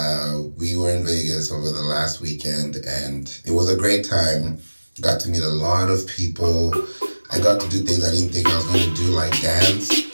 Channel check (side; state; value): both; inverted; correlation -1.00